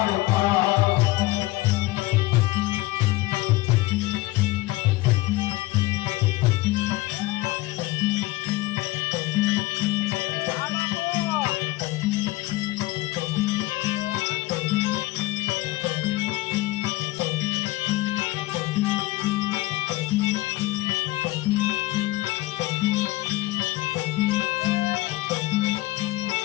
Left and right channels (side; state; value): right; quieter; 19.3 dB